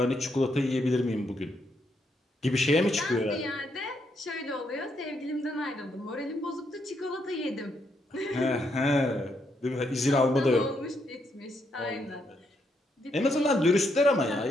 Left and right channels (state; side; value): normal; both; correlation 0.77